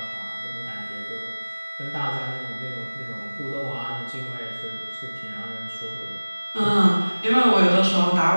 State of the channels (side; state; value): both; inverted; correlation -1.00